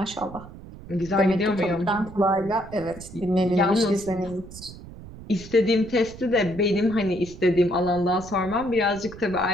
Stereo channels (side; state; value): right; noise; rumble, 16 dB below the sound